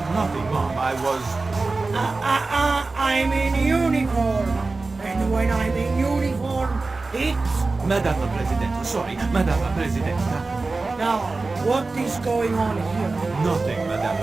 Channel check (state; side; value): quieter; left; 3.6 dB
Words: Nothing, Mom. I was... I'm in uniform. And when I'm in uniform, it's... Madame la Presidente, sorry, Madame la Presidente. Now, what is going on here? Nothing, Madame